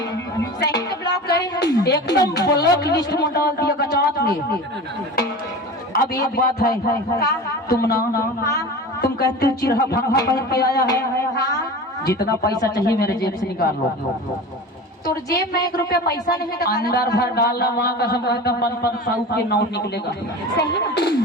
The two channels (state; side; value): normal; both; correlation 0.33